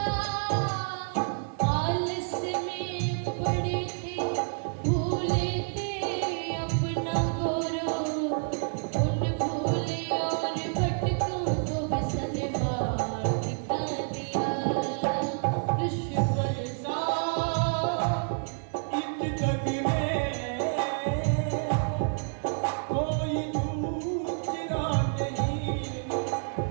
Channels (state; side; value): silent; left; 59 dB below the other